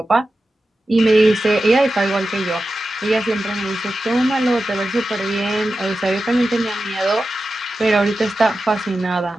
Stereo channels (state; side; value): normal; both; correlation 0.92